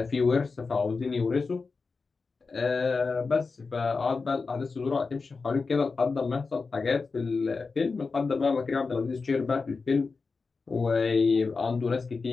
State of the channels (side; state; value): right; quieter; 4.4 dB